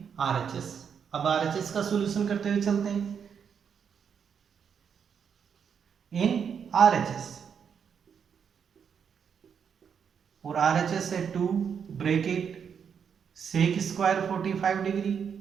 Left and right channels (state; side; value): quieter; left; 7.2 dB